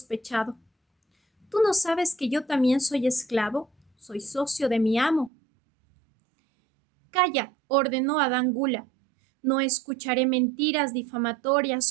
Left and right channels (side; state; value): left; drops out; at 5.3 s